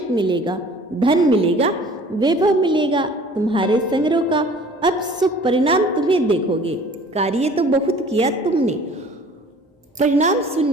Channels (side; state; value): both; normal; correlation 0.49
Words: मिलेगा, धन मिलेगा, वैभव मिलेगा, तुम्हारे संग्रह का अब शुभ परिणाम तुम्हें देखोगे। कार्य तो बहुत किया तुमने, परिणाम